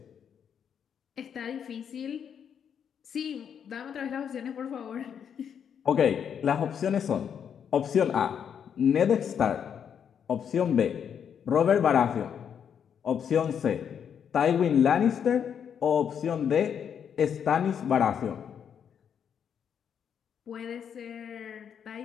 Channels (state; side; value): quieter; right; 8.0 dB